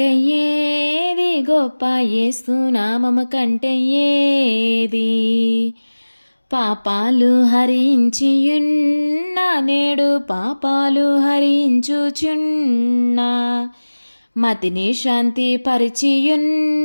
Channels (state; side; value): inverted; both; correlation -1.00